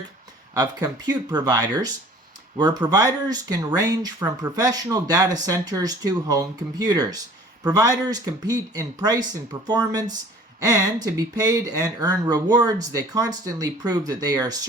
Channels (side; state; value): both; normal; correlation 0.49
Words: of compute providers, where providers can range from professional data centers to home computers. Providers compete in price and performance, and to be paid and earn rewards, they constantly prove that they are